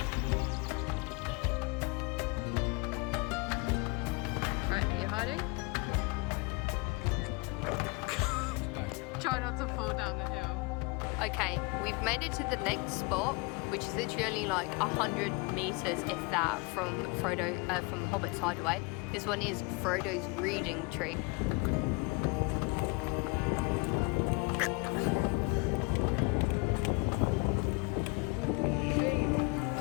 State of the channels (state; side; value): quieter; right; 27.7 dB